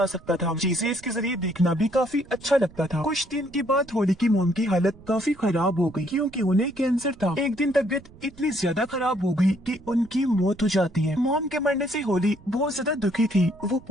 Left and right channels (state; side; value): noise; right; rumble, 23 dB below the sound